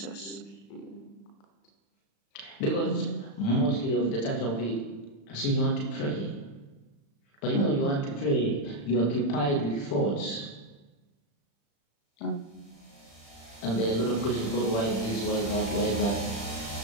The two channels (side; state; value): right; late; 35 ms